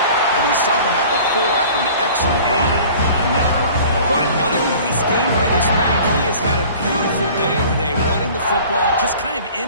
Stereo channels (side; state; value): both; inverted; correlation -0.46